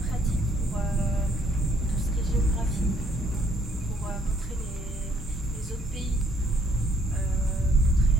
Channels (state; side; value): normal; both; correlation 0.65